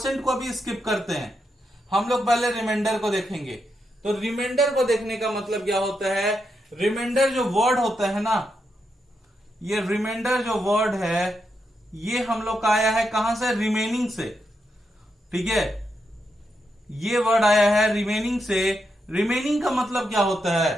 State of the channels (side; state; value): both; normal; correlation 0.83